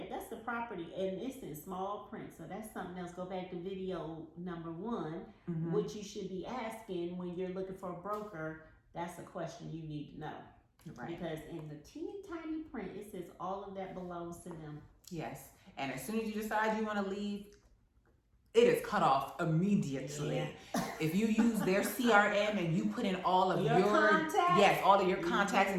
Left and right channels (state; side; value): identical; both; correlation 1.00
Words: the property, and it's in small print. So that's something else. Go back to video number 1, what you should be asking when you're looking for a broker. That's a question you need to know. Right. Because in the teeny tiny print, it says all of that belongs to them. Yes. And as soon as you decide you want to leave, it is cut off immediately. Yeah. If you use their CRM and you put in all of your contacts, all of your contacts